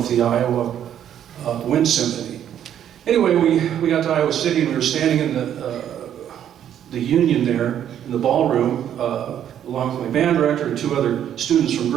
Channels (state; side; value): quieter; left; 10.1 dB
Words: the Iowa Wind Symphony. Anyway, we got to Iowa City and we were standing in the union there in the ballroom along with my band director and 2 other students from